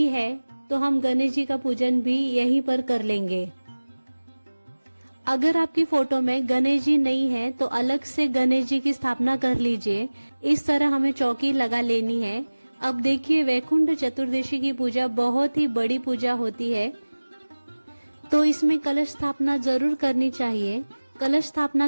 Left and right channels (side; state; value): both; inverted; correlation -1.00